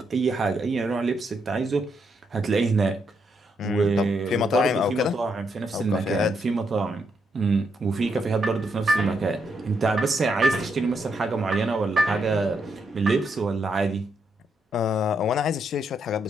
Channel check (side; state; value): both; normal; correlation 0.78